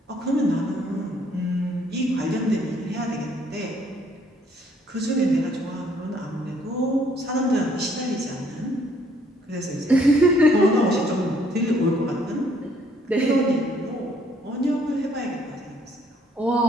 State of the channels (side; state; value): both; normal; correlation 0.65